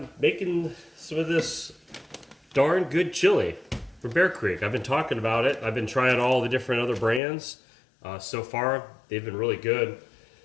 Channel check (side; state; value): right; drops out; at 7.2 s